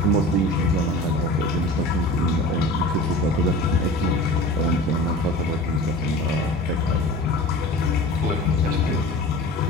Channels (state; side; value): normal; both; correlation 0.37